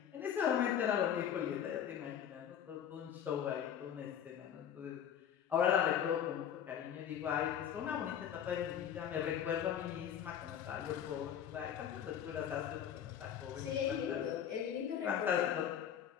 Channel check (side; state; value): right; quieter; 9.2 dB